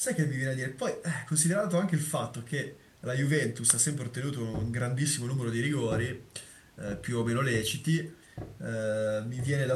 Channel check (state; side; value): identical; both; correlation 1.00